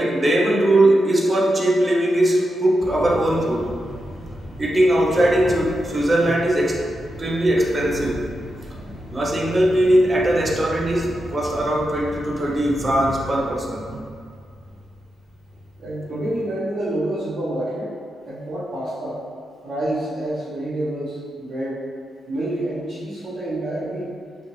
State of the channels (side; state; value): both; normal; correlation 0.88